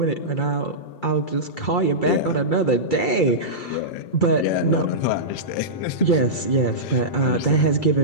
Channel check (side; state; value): right; late; 2.3 ms